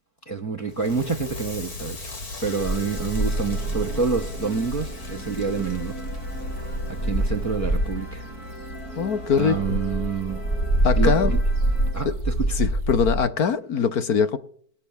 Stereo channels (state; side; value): late; right; 4.5 ms